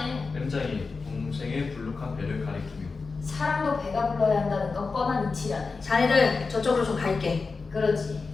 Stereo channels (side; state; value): right; quieter; 4.4 dB